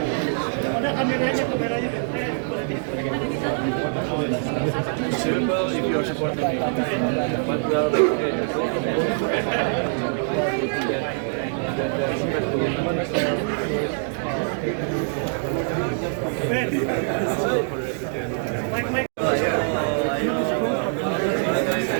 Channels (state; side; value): silent; left; 63 dB below the other